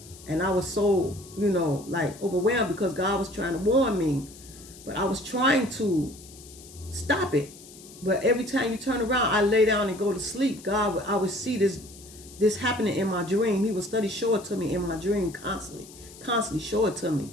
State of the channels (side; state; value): left; noise; hiss, 19 dB below the sound